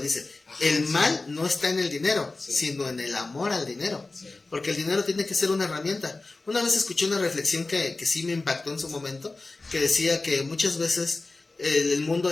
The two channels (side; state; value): right; quieter; 3.4 dB